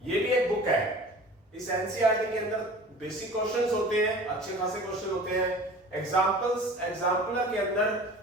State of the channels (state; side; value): normal; both; correlation 0.42